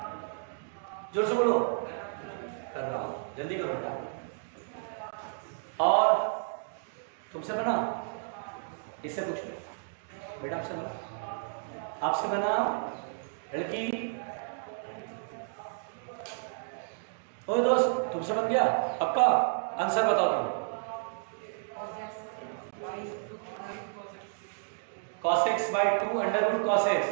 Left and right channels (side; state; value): left; silent; digital silence